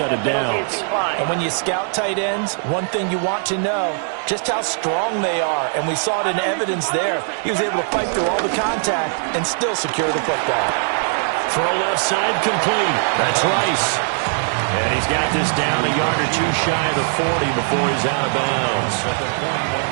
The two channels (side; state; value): left; silent; 56 dB below the other